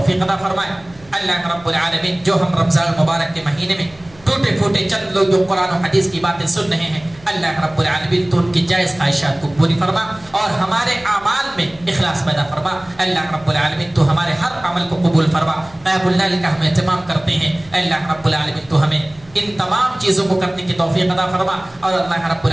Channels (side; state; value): right; noise; hum, 26 dB below the sound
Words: عطا فرمائے۔ اللہ رب العالمین جو ہم رمضان المبارک کے مہینے میں ٹوٹے پھوٹے چند لوگ جو قرآن و حدیث کی باتیں سن رہے ہیں، اللہ رب العالمین تو ان کی جائز خواہشات کو پوری فرما اور ہمارے اعمال میں اخلاص پیدا فرما۔ اللہ رب العالمین تو ہمارے ہر عمل کو قبول فرما۔ قیام اللیل کا ہم اہتمام کرتے ہیں، اللہ رب العالمین تو ہمیں ان تمام چیزوں کو کرنے کی توفیق عطا فرما۔ اور اللہ رب